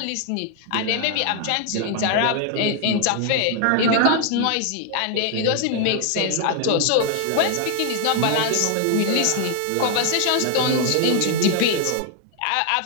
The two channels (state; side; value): different; both; correlation 0.00